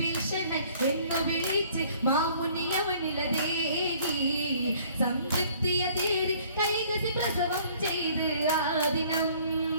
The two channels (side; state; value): both; inverted; correlation -0.56